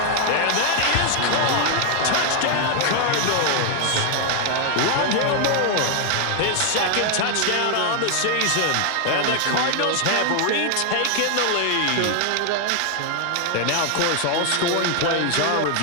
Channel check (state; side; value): different; both; correlation 0.00